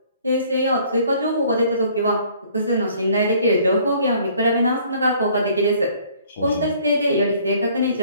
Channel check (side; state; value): both; inverted; correlation -0.58